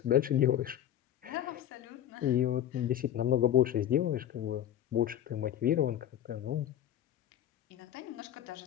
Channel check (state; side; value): quieter; right; 11.2 dB